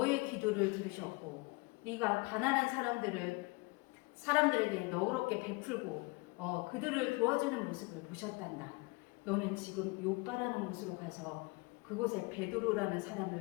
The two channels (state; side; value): quieter; right; 26.3 dB